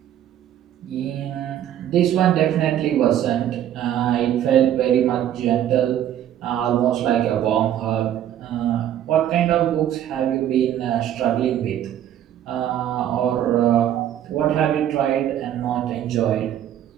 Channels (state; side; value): quieter; left; 11.1 dB